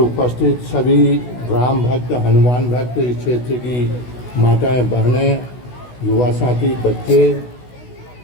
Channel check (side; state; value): right; late; 16 ms